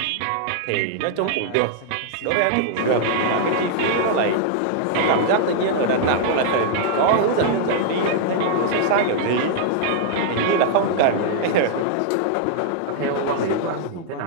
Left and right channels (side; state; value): both; different; correlation -0.01